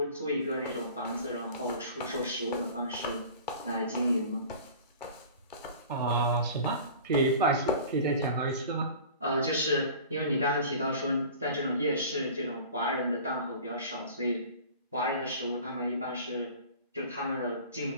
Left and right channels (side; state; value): both; inverted; correlation -0.41